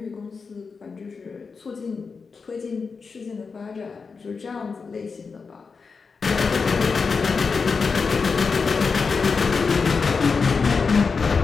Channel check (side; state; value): right; quieter; 5.0 dB